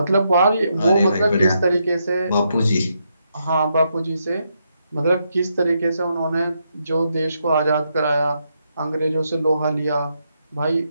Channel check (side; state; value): both; inverted; correlation -0.80